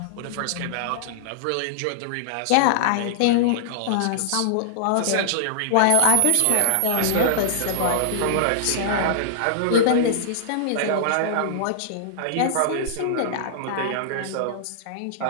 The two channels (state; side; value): different; both; correlation -0.01